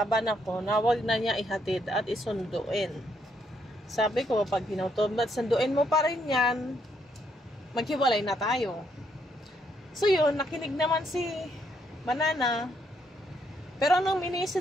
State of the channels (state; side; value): normal; both; correlation 0.74